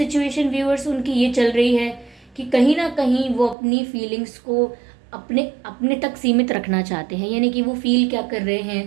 व्यूअर्स उनकी ये चल रही है कि कहीं ना कहीं वो अपनी फीलिंग्स को अपने अपने तक सीमित रखना चाहते हैं, यानी कि वो फील क्या कर रहे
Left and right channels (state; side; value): drops out; left; at 3.6 s